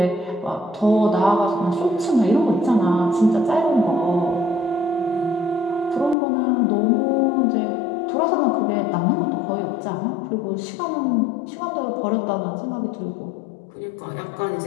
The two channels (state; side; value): drops out; right; at 6.2 s